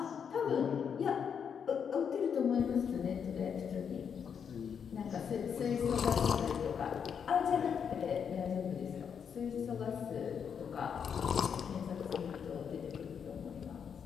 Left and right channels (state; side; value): quieter; right; 7.3 dB